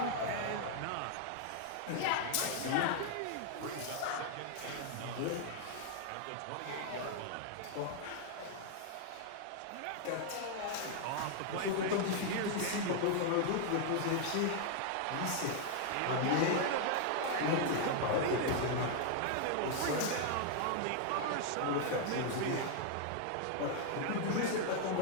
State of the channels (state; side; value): different; both; correlation 0.00